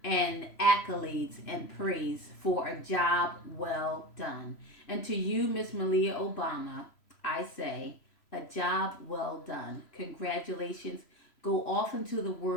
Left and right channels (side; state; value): right; late; 3.0 ms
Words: and accolades and praise for a job well done. And to you, Miss Malia Obama, I say, a job well done. Congratulations. Go off into the